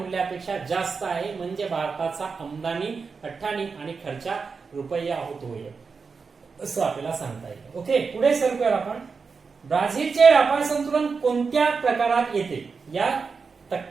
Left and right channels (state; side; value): quieter; left; 5.1 dB